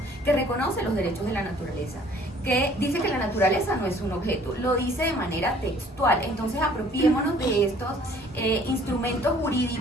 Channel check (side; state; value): both; normal; correlation 0.56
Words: que reconoce los derechos de la naturaleza, que dice que la naturaleza no es un objeto, lo dice de manera textual. Entonces apropiémonos de estos instrumentos